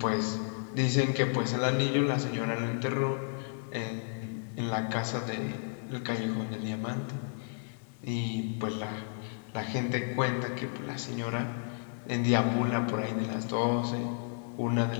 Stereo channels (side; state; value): right; silent; digital silence